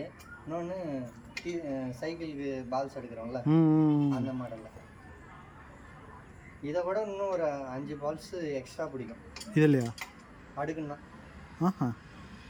இன்னொன்று சைக்கிளுக்கு பால்ஸ் எடுக்கிறோம்ல, அந்த மாடலில். இதை விட இன்னும் ஒரு 5 பால்ஸ் எக்ஸ்ட்ரா பிடிக்கும் இது இல்லையா அடுக்குன்னா. ஆஹா,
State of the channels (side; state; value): both; identical; correlation 1.00